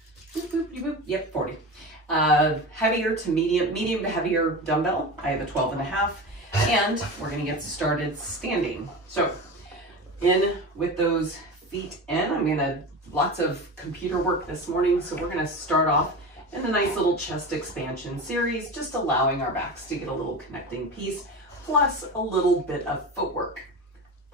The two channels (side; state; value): both; normal; correlation 0.28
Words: Boop, boop, boop. Yep, 40. Heavier to medium to heavier dumbbell. I have a 12.5, and we're gonna get started standing. So in with those feet in, I'm gonna, lots of computer work this morning, so we're gonna start off in a nice little chest expansion series, just allowing our backs to get a little connecting piece, plus a little bit of footwork.